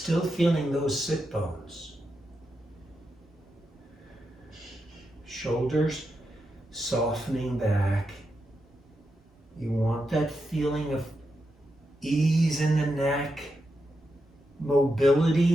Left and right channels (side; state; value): both; normal; correlation 0.86